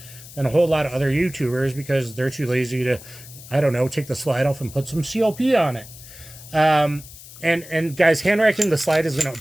than a whole lot of other YouTubers because they're too lazy to, I don't know, take the slide off and put some CLP on it. And guys, hand racking the slide is going to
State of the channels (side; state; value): left; noise; hiss, 17 dB below the sound